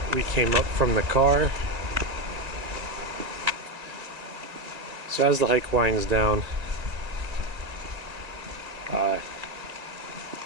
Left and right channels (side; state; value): left; late; 2.2 ms